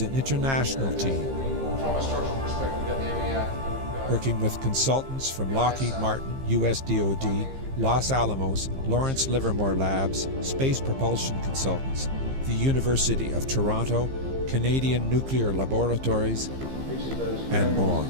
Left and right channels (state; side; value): late; left; 15 ms